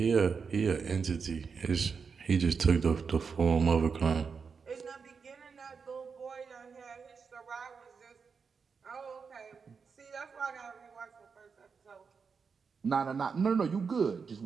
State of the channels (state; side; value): quieter; left; 5.6 dB